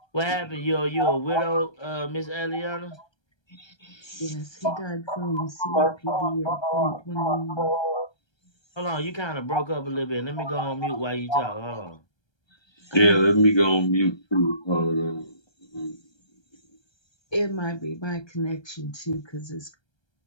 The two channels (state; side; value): late; right; 1.3 ms